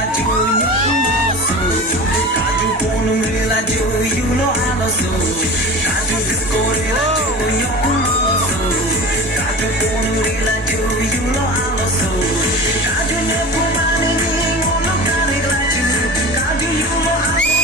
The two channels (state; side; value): normal; both; correlation 0.33